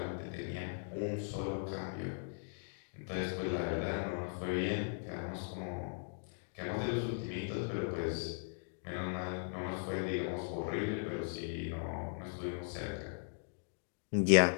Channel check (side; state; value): right; silent; digital silence